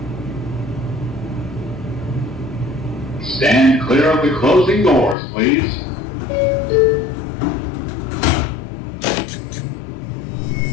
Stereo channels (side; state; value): right; drops out; at 5.2 s